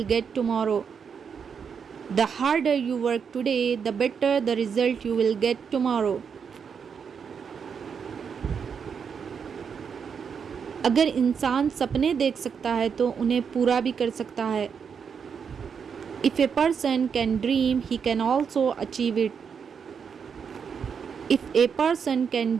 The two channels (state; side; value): quieter; left; 6.7 dB